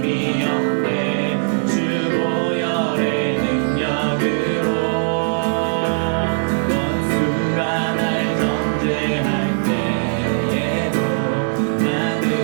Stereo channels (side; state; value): left; silent; digital silence